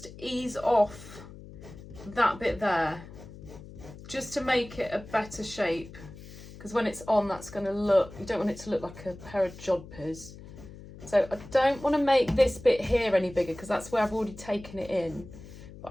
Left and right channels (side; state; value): left; noise; hum, 16 dB below the sound